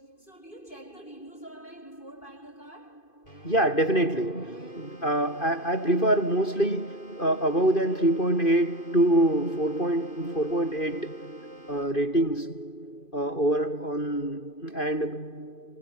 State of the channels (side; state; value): right; late; 2.5 ms